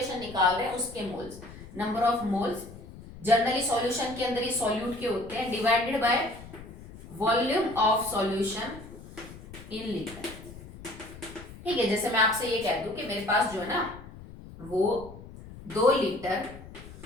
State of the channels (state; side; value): noise; left; rumble, 16 dB below the sound